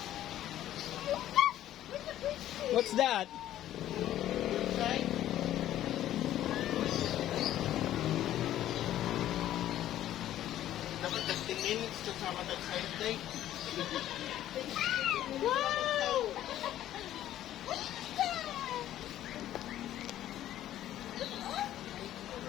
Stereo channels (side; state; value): right; quieter; 12.7 dB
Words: What's that? Dapat 15 minutes to sa matag side day. Wow!